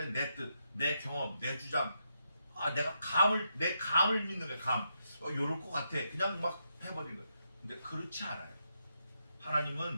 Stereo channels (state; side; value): inverted; both; correlation -0.82